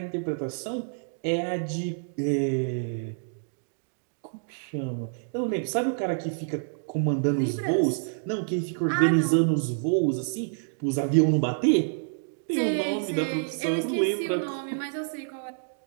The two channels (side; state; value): left; silent; digital silence